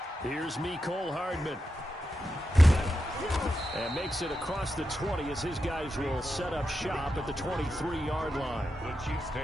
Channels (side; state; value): both; normal; correlation 0.88